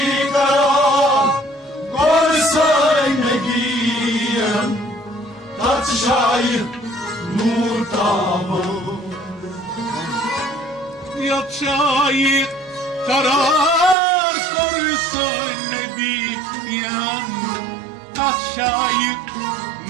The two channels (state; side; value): drops out; left; at 14.0 s